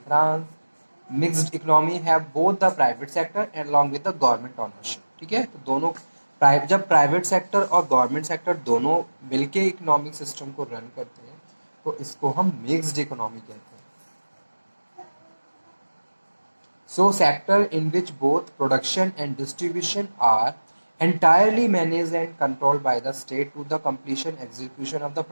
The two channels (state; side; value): inverted; both; correlation -1.00